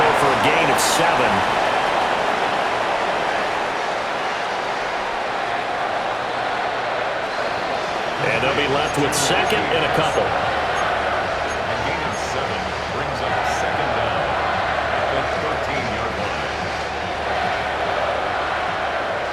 for a gain of 7. And they'll be left with second and a couple. A gain of 7 brings up second down at the 13-yard line.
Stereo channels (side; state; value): both; identical; correlation 1.00